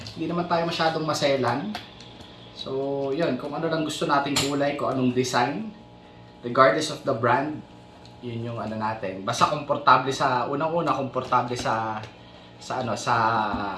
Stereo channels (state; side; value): identical; both; correlation 1.00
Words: hindi naman tayo masyadong maselan. So, yun, kung ano lang gusto nating kulay, kung anong design, regardless of the brand, yun yung ano natin. Basta komportable sa unang-una, komportable sa